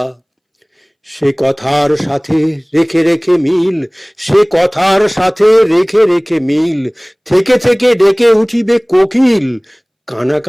সে কথার সাথে রেখে রেখে মিল, সে কথার সাথে রেখে রেখে মিল। থেকে থেকে ডেকে উঠিবে কোকিল,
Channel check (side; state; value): both; identical; correlation 1.00